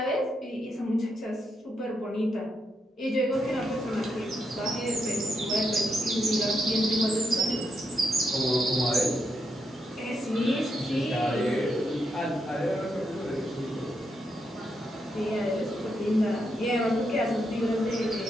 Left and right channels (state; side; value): normal; both; correlation 0.81